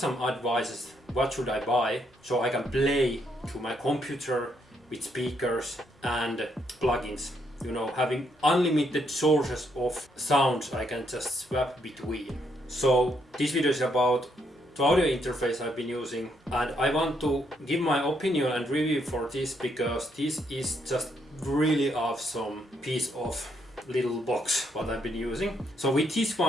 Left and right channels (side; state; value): both; normal; correlation 0.74